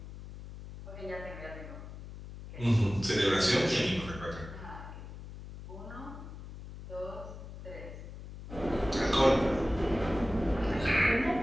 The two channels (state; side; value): noise; left; hum, 13 dB below the sound